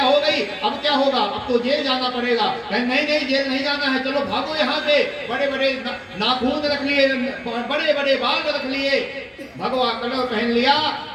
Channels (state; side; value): identical; both; correlation 1.00